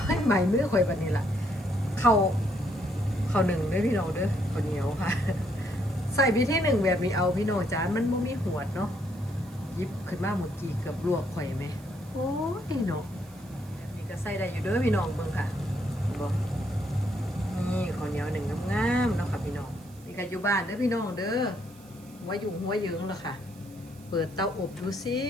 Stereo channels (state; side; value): noise; right; hiss, 25 dB below the sound